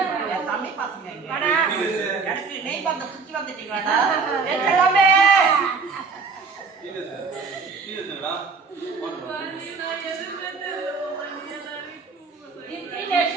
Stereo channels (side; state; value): left; quieter; 4.9 dB